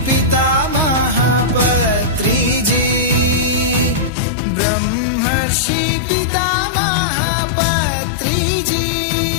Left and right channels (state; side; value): drops out; right; at 4.1 s